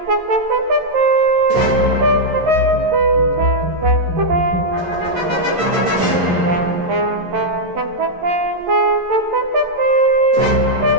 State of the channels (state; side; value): late; left; 11 ms